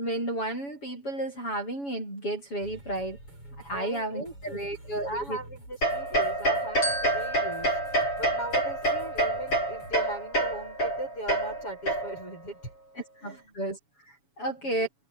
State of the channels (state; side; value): late; right; 7.1 ms